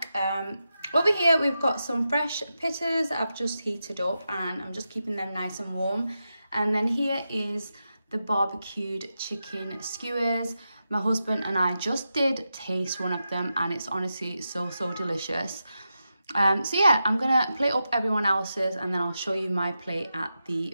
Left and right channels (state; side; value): inverted; both; correlation -0.89